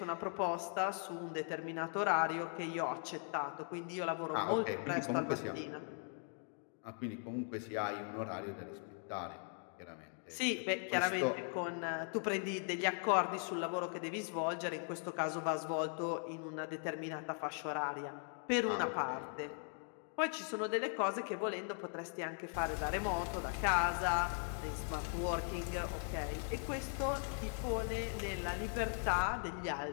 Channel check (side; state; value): right; silent; 51 dB below the other